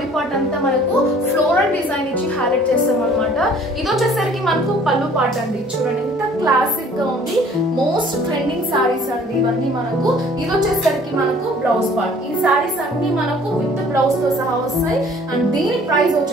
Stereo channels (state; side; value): normal; both; correlation 0.54